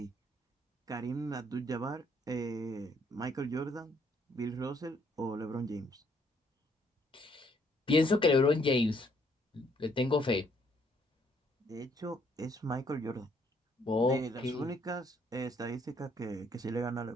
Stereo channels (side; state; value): both; normal; correlation 0.68